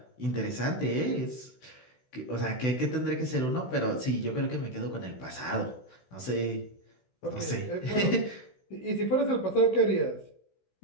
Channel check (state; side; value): late; right; 16 ms